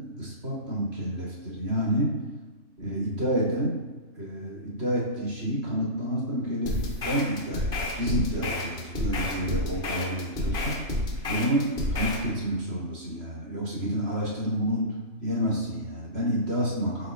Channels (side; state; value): left; late; 2.5 ms